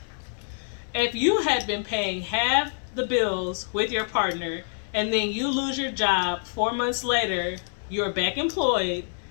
If you had been paying half the bills with your partner, and then you lose your job 4 months later, you're back employed.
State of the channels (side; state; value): right; silent; digital silence